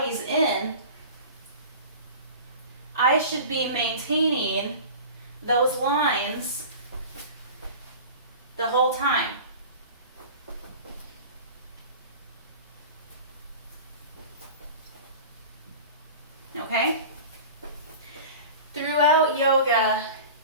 in, I should be maintaining those lines the whole time. Okay? Throughout yoga,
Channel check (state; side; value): inverted; both; correlation -0.37